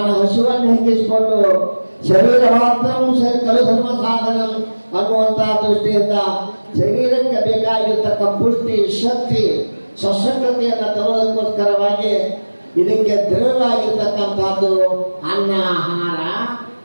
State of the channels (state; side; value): inverted; both; correlation -1.00